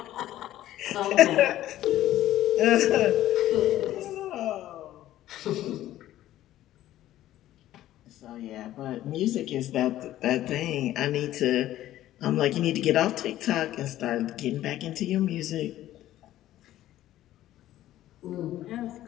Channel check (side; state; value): right; quieter; 13.8 dB